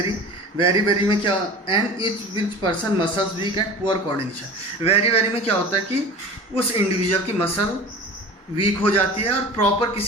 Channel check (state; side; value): normal; both; correlation 0.37